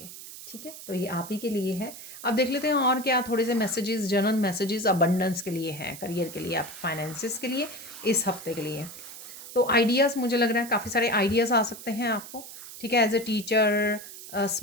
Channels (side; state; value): right; noise; hiss, 13 dB below the sound